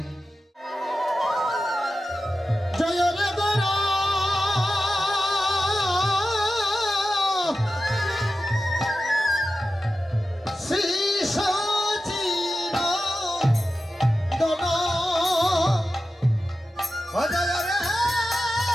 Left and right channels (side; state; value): both; normal; correlation 0.92